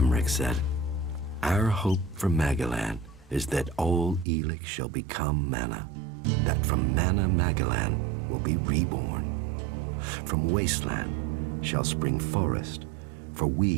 said, our hope for Magalan is that all Elex shall become mana, that from mana Magalan will be reborn. From wasteland shall spring forest, for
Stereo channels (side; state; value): left; drops out; at 4.2 s